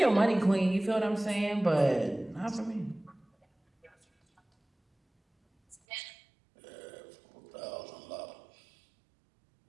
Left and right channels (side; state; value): left; drops out; at 5.8 s